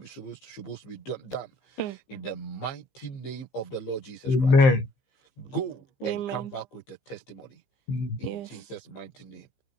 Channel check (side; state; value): right; late; 15 ms